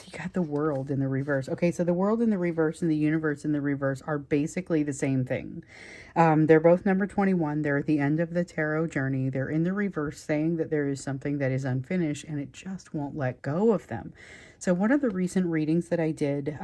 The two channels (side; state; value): both; identical; correlation 1.00